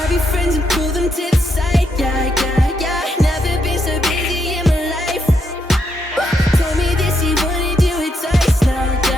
your friends and pull them to the side, yeah, yeah, yeah. Never been so busy in my life. Told me that she wanna do it twice now,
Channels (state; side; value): normal; both; correlation 0.79